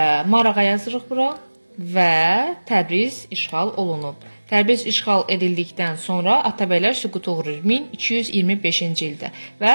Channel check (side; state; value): both; inverted; correlation -1.00